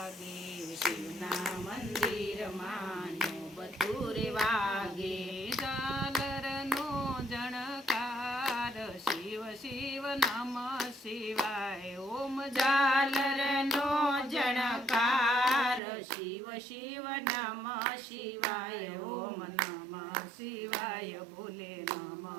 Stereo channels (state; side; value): drops out; left; at 15.8 s